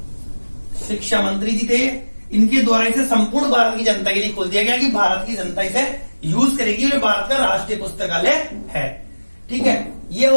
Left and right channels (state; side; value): inverted; both; correlation -1.00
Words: शिक्षा मंत्री जी थे। इनके द्वारा इसे संपूर्ण भारत की जनता के लिए खोल दिया गया कि भारत की जनता इसे यूज करेगी और भारत का राष्ट्रीय पुस्तकालय है। ठीक है, ये